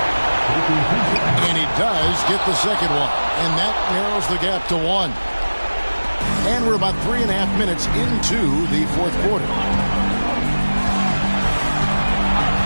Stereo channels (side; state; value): both; inverted; correlation -1.00